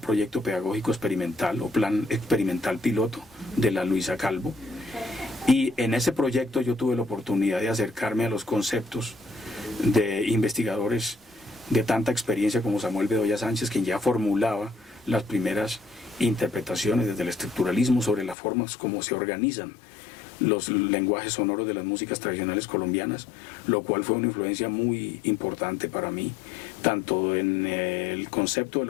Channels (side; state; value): right; drops out; at 18.4 s